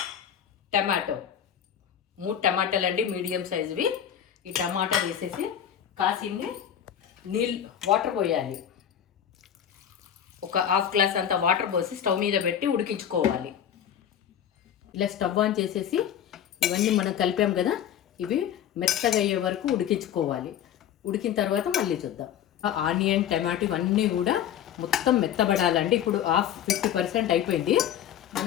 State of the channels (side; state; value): right; quieter; 9.7 dB